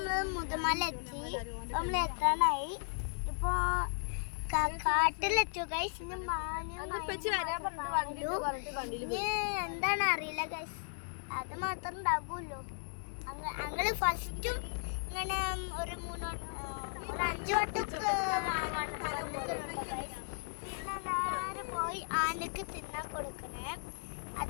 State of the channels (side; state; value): right; silent; digital silence